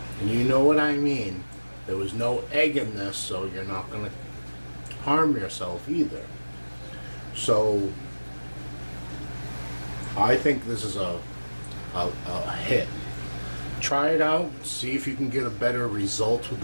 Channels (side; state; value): both; inverted; correlation -1.00